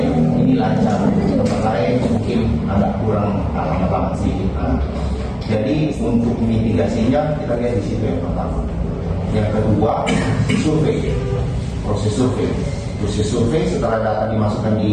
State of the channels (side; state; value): both; identical; correlation 1.00